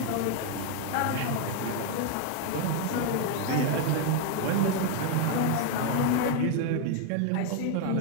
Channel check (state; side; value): different; both; correlation 0.01